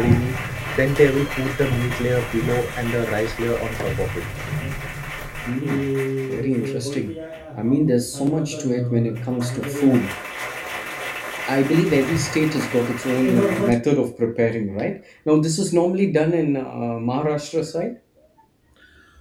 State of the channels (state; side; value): identical; both; correlation 1.00